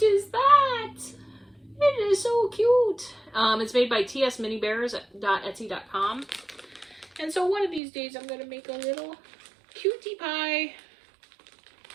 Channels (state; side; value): drops out; left; at 7.8 s